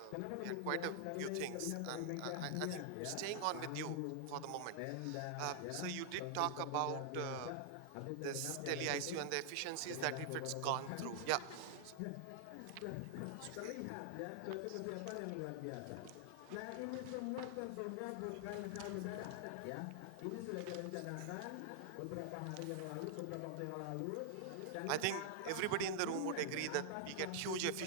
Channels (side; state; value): both; different; correlation -0.01